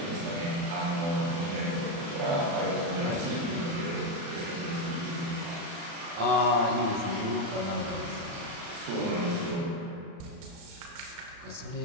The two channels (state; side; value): late; left; 35 ms